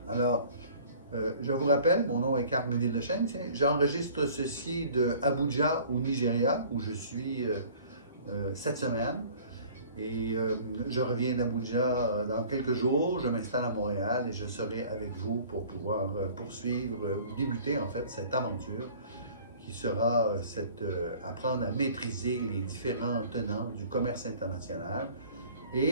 Alors, je vous rappelle, mon nom est Carl Méville-Deschênes. J'enregistre ceci de Abuja au Nigeria, où je suis cette semaine. Et je reviens d'Abuja dans quelques jours. Je m'installe à Montréal et je serai avec vous pour pouvoir poursuivre ou débuter en fait cette aventure qui sera apprendre à maîtriser les différents tenants du commerce international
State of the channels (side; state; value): both; inverted; correlation -0.49